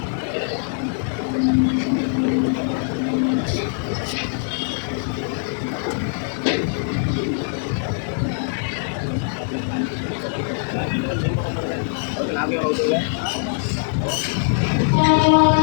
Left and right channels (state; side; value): silent; right; digital silence